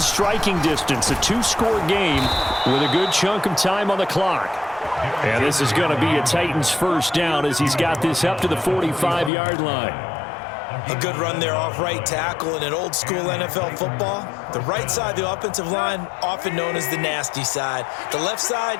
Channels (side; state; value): right; drops out; at 9.3 s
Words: distance. A 2-score game with a good chunk of time on the clock. And this is going to be a Titans first down as he's got this up to the 45-yard line. A good run there off right tackle in an old school NFL football. The right side of the offensive line, often known as the nasty side. The left side,